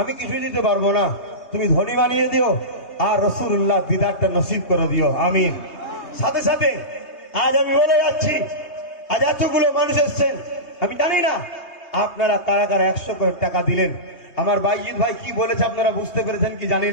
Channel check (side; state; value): right; late; 3.2 ms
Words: আমি কিছুই দিতে পারবো না, তুমি ধনী বানিয়ে দিও আর রাসূলুল্লাহ দিদারটা নসিব করে দিও, আমিন। সাথে সাথে আজ আমি বলে যাচ্ছি, আজ এতগুলো মানুষ এসছেন, আমি জানি না আপনারা কারা কারা 100 করে টাকা দিলেন। আমার বাইজিৎ ভাই কি বলেছে আপনারা বুঝতে পেরেছেন কি জানি